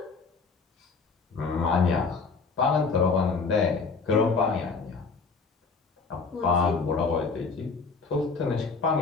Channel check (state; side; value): quieter; right; 4.6 dB